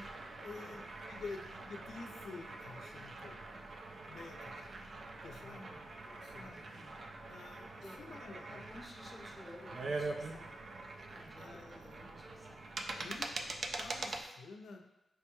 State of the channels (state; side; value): normal; both; correlation 0.88